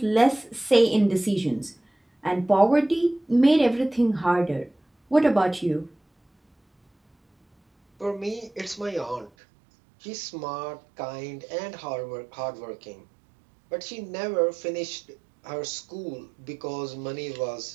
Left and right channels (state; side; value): drops out; left; at 9.3 s